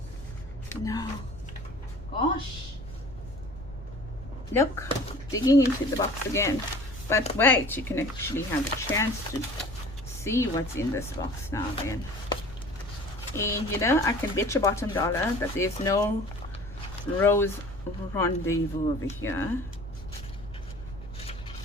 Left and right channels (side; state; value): left; noise; rumble, 16 dB below the sound